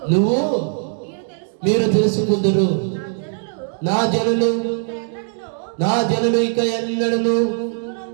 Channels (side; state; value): left; silent; 66 dB below the other